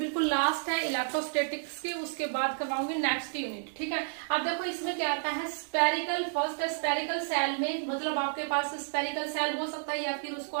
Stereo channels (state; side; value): silent; left; digital silence